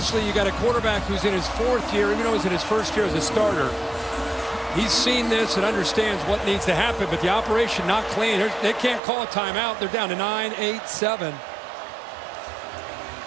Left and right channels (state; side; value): drops out; left; at 9.0 s